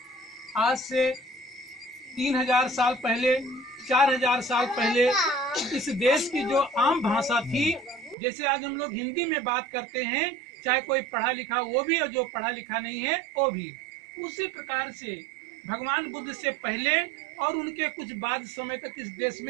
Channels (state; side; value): drops out; left; at 8.2 s